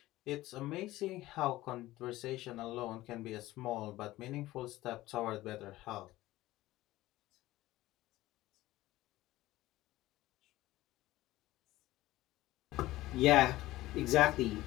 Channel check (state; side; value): quieter; right; 16.9 dB